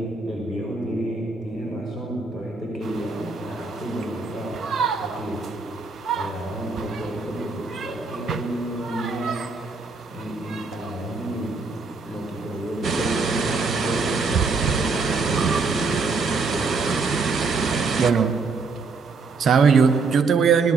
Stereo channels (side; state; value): left; quieter; 4.2 dB